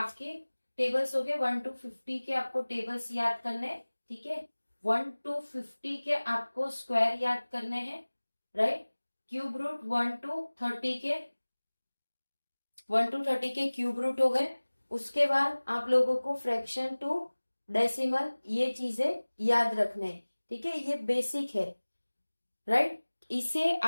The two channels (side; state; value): both; inverted; correlation -1.00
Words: टेबल्स हो गए 1 to 50 के, आपको टेबल्स याद करने हैं। ठीक है। 1 to 50 के आपको स्क्वायर याद करने हैं। राइट। क्यूब रूट 1 to 30 के, 1 to 30 के क्यूब रूट हो गए। उसके बाद आप लोगों को फ्रैक्शन टू डेसिमल, ये चीजें याद रखने हैं। ठीक है, ये बेसिक है। राइट। इसे